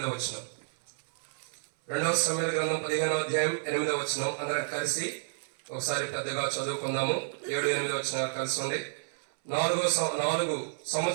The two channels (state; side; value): silent; left; 57 dB below the other